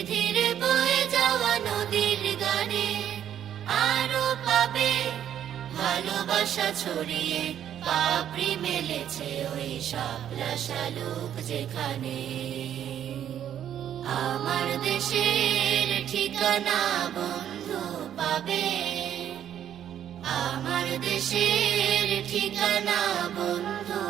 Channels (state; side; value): quieter; left; 10.1 dB